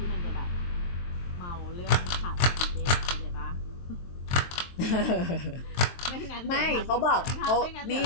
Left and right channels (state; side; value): late; right; 23 ms